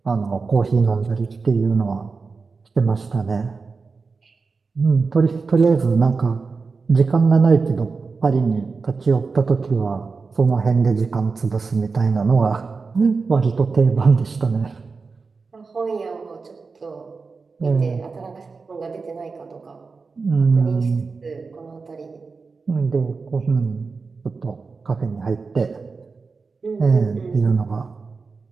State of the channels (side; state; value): left; quieter; 4.5 dB